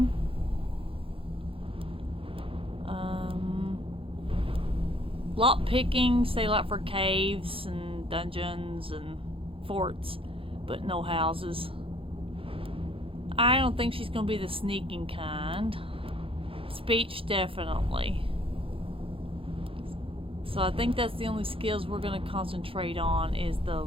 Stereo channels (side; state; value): left; late; 0.26 ms